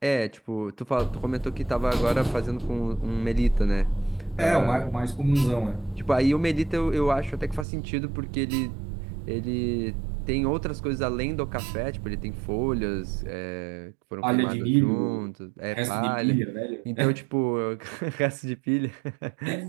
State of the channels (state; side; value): drops out; left; at 7.7 s